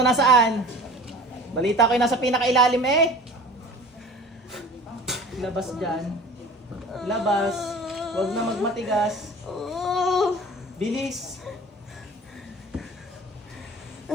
nasaan? Balita ko yung nasa pinakailalim eh. Labas dyan. Labas. Huwag na magmatigas. Bilis.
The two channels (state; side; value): normal; both; correlation 0.42